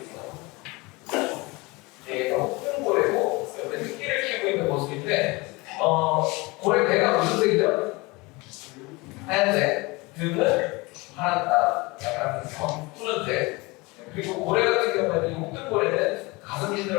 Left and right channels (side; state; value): right; quieter; 24.5 dB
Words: 네, 큰 고래고 옆에 새끼를 키우고 있는 모습인데 고래 배가 무슨 색이죠? 하얀색. 등은 약간 푸른색. 그리고 고래 같은 경우에는 홍등고래는 가슴